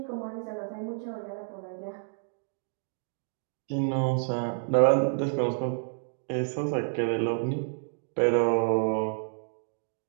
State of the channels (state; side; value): silent; left; 58 dB below the other